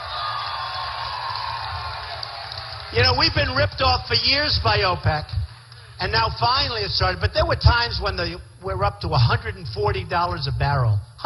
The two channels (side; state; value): both; identical; correlation 1.00